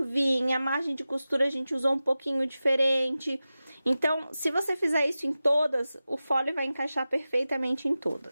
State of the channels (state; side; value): inverted; both; correlation -0.94